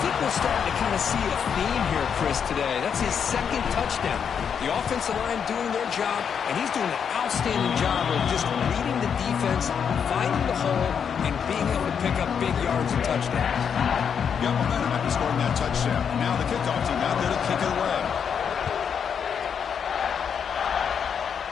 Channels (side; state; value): right; quieter; 7.3 dB